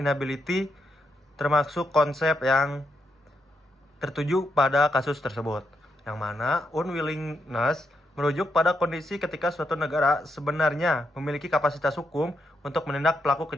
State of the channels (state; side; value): normal; both; correlation 0.81